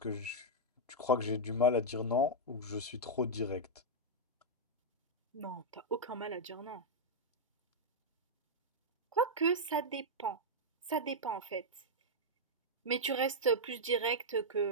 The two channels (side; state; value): both; normal; correlation -0.04